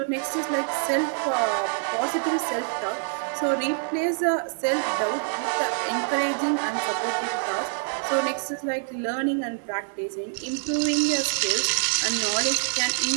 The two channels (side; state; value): left; silent; 61 dB below the other